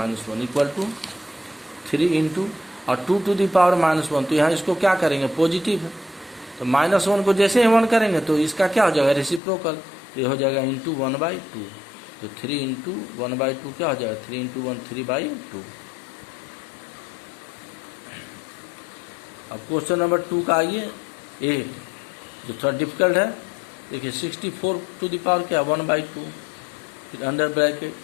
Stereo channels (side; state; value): right; drops out; at 9.4 s